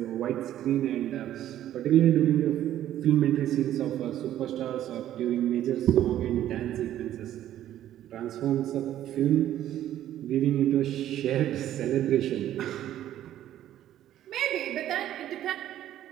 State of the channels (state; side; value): quieter; left; 12.2 dB